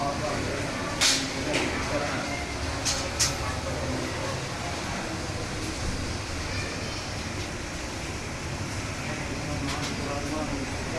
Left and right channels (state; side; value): identical; both; correlation 1.00